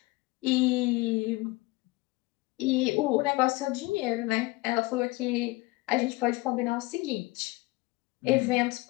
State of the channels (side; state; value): right; quieter; 21.8 dB